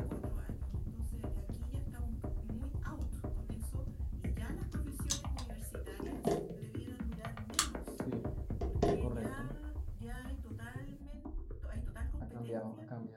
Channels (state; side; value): identical; both; correlation 1.00